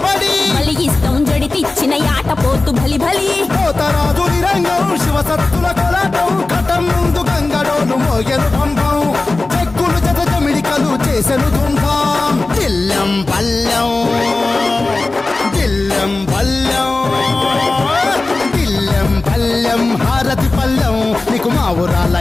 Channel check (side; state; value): right; quieter; 3.3 dB